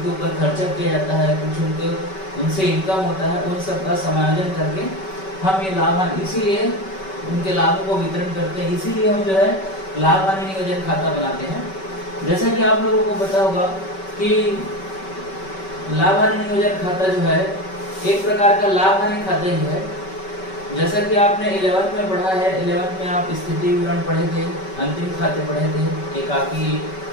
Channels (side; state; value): right; late; 5.3 ms